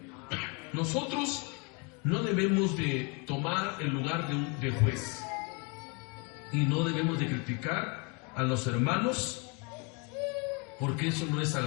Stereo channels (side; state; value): right; quieter; 32.4 dB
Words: Nosotros no debemos de tomar el lugar de juez. Y no debemos de criticar a los hermanos, porque eso no es